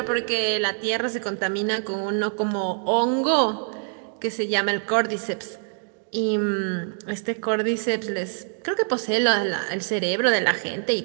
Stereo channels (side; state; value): left; silent; 58 dB below the other